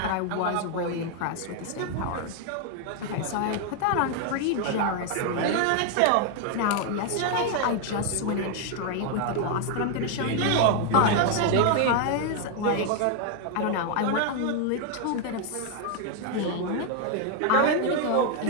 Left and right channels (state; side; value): different; both; correlation 0.00